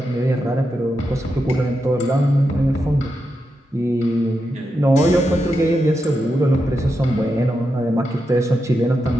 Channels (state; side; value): normal; both; correlation 0.86